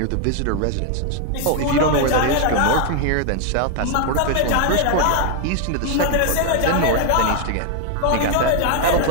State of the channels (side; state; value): both; different; correlation 0.00